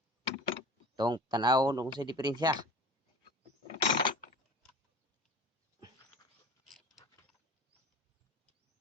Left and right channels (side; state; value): both; normal; correlation 0.39